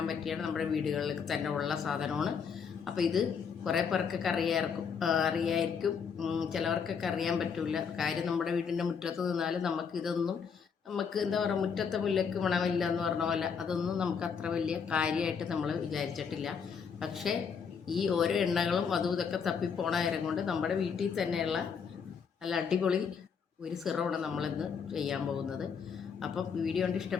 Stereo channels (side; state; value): right; quieter; 6.4 dB